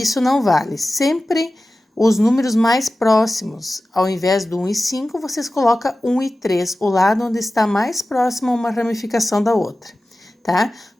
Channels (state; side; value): normal; both; correlation 0.95